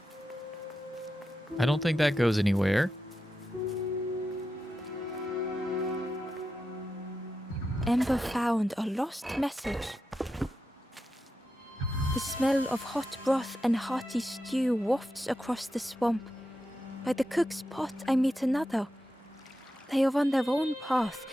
I don't think that goes anywhere. Ember found a lost message. The smell of hot broth and hearty stew wafts across the swamp. By the cook's pot I meet another. They are on their own path,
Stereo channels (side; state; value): both; normal; correlation 0.89